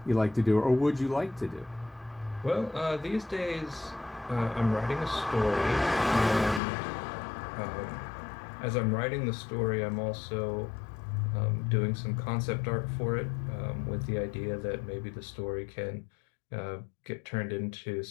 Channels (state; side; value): drops out; right; at 6.6 s